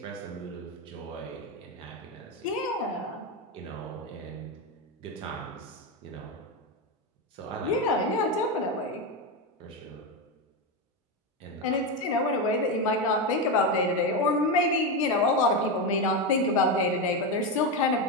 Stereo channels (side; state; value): both; normal; correlation 0.12